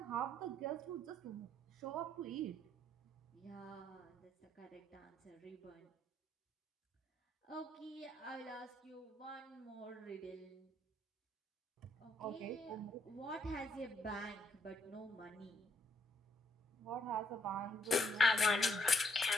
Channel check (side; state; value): both; normal; correlation 0.72